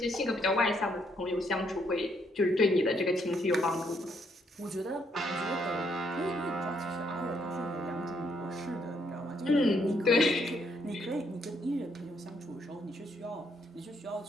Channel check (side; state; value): both; normal; correlation 0.72